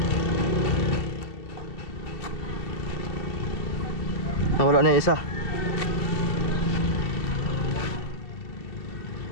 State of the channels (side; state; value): right; late; 2.9 ms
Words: Nawala na yung isa.